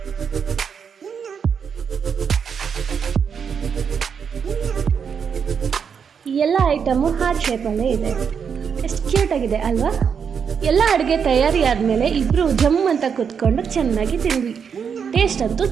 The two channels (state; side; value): quieter; left; 6.8 dB